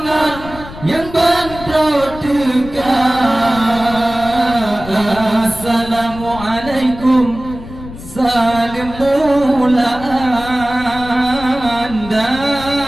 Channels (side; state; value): left; noise; rumble, 14 dB below the sound